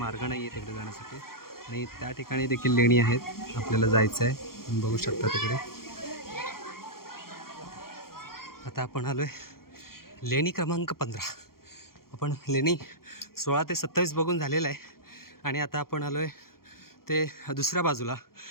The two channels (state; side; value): late; right; 0.93 ms